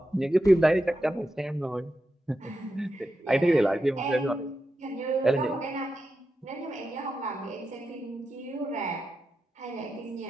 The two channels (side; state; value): both; normal; correlation 0.88